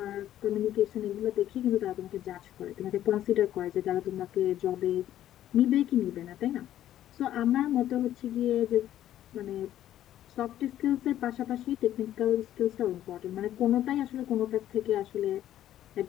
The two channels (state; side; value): quieter; right; 12.2 dB